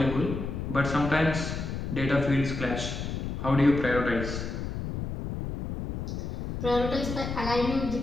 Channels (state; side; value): noise; left; rumble, 5 dB below the sound